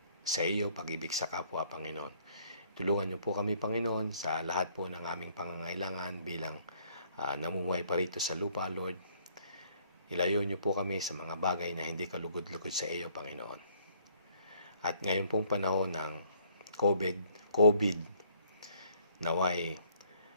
sa iyo, pag-ibig sa kapwa, Panginoon. Tulungan niyo po kami, Panginoon, sa lahat po ng aming pangangailangan bilang namumuhay pa rito sa lupa, Lord. Ilayo niyo po kami sa mga bagay na hindi kalugod-lugod sa iyo, Panginoon. At ngayon pong panahon ng COVID, naway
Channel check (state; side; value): inverted; both; correlation -0.63